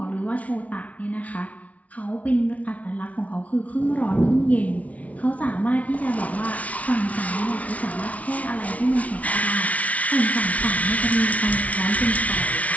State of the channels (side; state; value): right; late; 0.068 ms